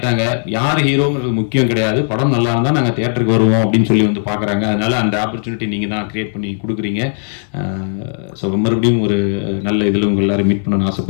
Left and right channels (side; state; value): right; silent; digital silence